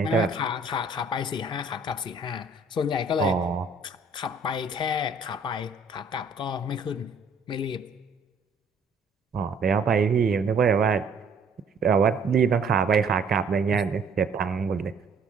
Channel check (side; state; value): left; quieter; 3.4 dB